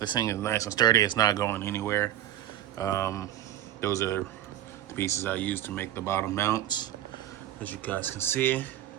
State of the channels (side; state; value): left; quieter; 12.6 dB